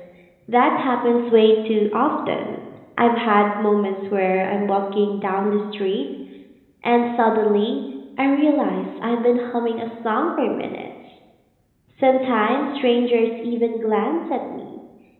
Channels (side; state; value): both; identical; correlation 1.00